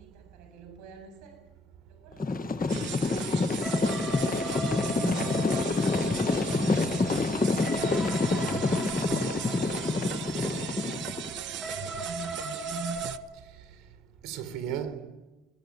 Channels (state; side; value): normal; both; correlation 0.68